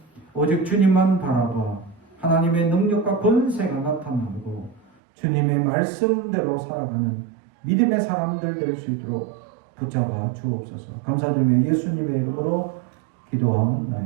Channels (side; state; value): left; drops out; at 4.9 s